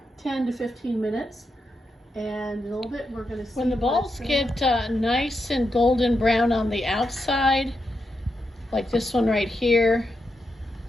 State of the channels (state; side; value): normal; both; correlation 0.85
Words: to 15 minutes. And in a little bit we're going to see. When the balls get nice and golden brown on the outside, like this one right here,